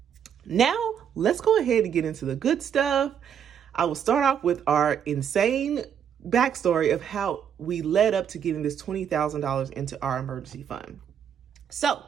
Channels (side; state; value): left; quieter; 8.4 dB